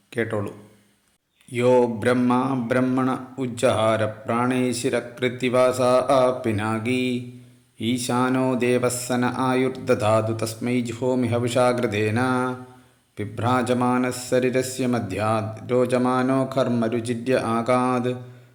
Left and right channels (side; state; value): both; identical; correlation 1.00